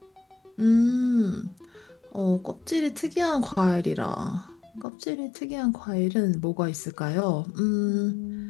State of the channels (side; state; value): right; drops out; at 4.9 s